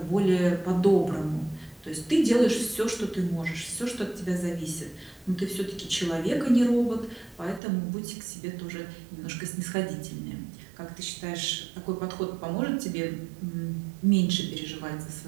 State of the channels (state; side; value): drops out; left; at 7.6 s